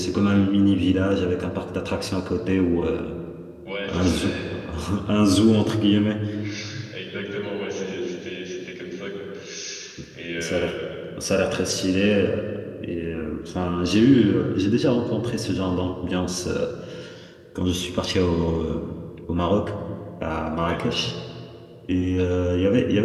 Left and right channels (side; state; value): both; identical; correlation 1.00